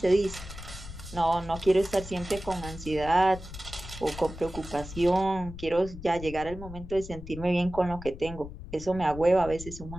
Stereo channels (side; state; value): left; noise; rumble, 12 dB below the sound